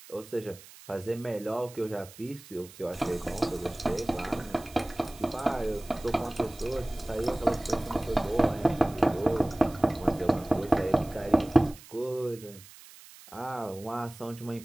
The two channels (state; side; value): noise; right; hiss, 20 dB below the sound